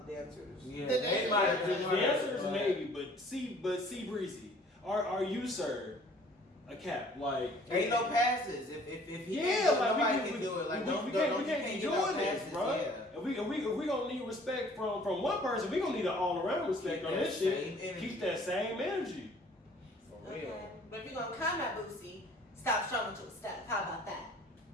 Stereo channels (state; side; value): normal; both; correlation 0.54